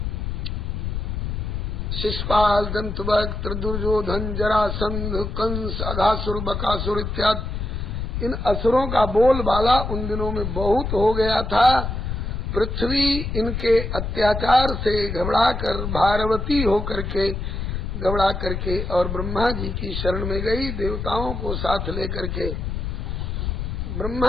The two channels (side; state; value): left; noise; rumble, 3 dB below the sound